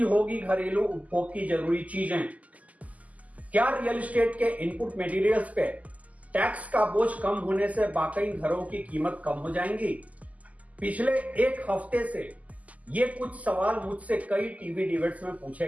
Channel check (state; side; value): late; left; 0.074 ms